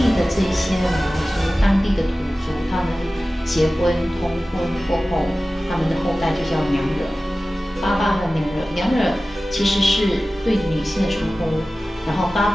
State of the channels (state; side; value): normal; both; correlation 0.96